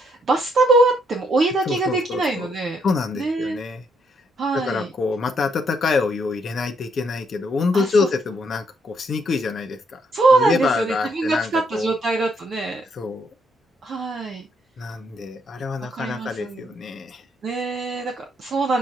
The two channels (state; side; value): normal; both; correlation 0.73